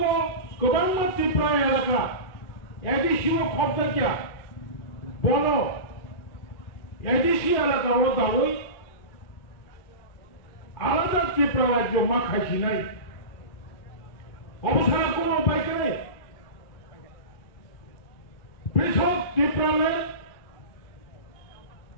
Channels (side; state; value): right; late; 2.4 ms